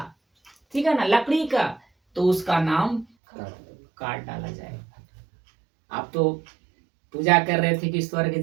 ठीक है ना, लकड़ी का, तो उसका नाम काट डाला जाएगा। आप तो पूजा कर रहे थे कि स्वर्ग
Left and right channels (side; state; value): left; drops out; at 3.1 s